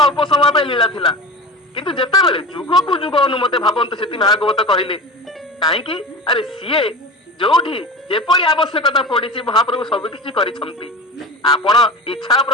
समय पे लीला थिला किंतु जेते बेले जुग को जुग अनुमते भावंत सेति भागवत कहिले काहे कि अरे सीए जोठी जेपरी आवश्यकता पड़ी महाप्रभु सबकि करिसंती। आपण इच्छा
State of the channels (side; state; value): both; normal; correlation 0.30